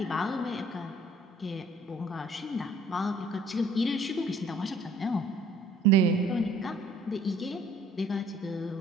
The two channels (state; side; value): normal; both; correlation 0.57